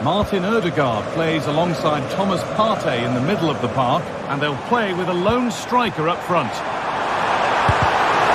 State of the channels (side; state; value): both; identical; correlation 1.00